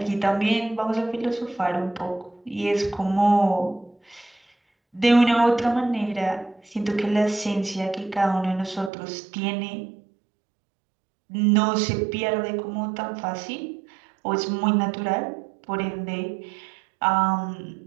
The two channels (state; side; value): drops out; left; at 8.9 s